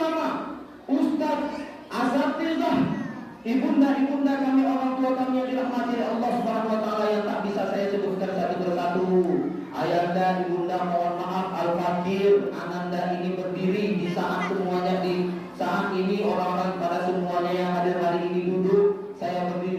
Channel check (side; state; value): both; identical; correlation 1.00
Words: ustaz, asatizah, ibunda-ibunda kami, orang tua kami yang dirahmati oleh Allah Subhanahu wa taala yang tak bisa saya sebutkan satu persatu. Ayanda, ibunda mohon maaf, Al-Fakir, Ananda ini berdiri di saat semuanya saat ini orang-orang pada semuanya yang hadir hari ini duduk. Saya